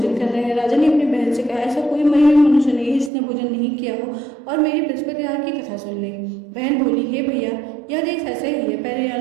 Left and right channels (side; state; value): left; drops out; at 3.1 s